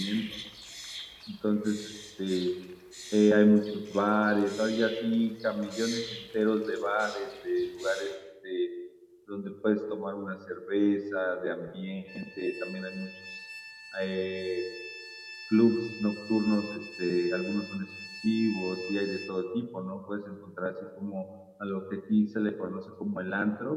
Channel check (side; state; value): both; identical; correlation 1.00